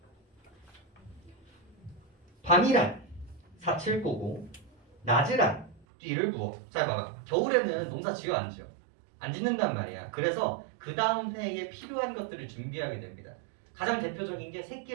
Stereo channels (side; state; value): left; drops out; at 5.9 s